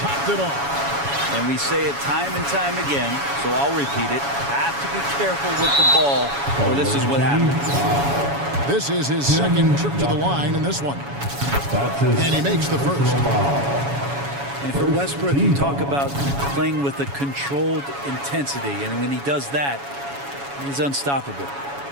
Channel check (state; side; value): late; left; 7.1 ms